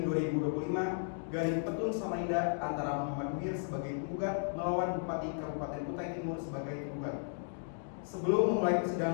Petun Samarinda antara Muhammad Munir sebagai penggugat melawan Bupati Kabupaten Kutai Timur sebagai penggugat. Sebelum memulai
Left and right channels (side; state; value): right; silent; digital silence